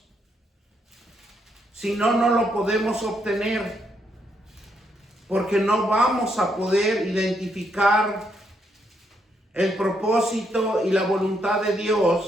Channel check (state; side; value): normal; both; correlation 0.76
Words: Si no, no lo podemos obtener, porque no vamos a poder identificar el propósito y la voluntad de